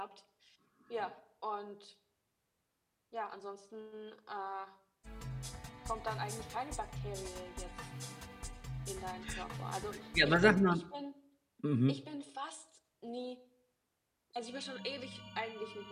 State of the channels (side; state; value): both; identical; correlation 1.00